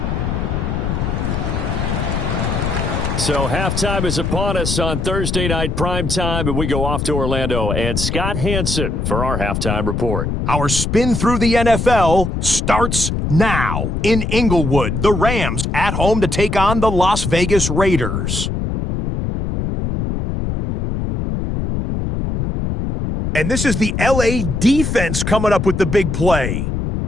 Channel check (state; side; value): noise; left; rumble, 2 dB below the sound